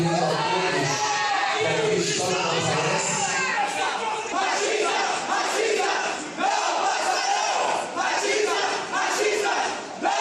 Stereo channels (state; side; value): identical; both; correlation 1.00